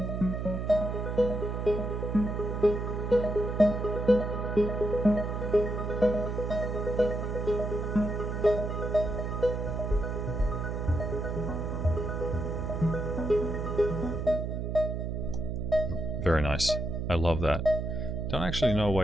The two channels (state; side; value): noise; right; hum, 3 dB below the sound